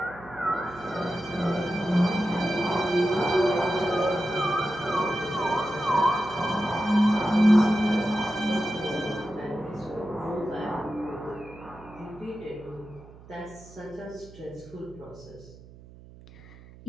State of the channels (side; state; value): right; noise; hum, 20 dB below the sound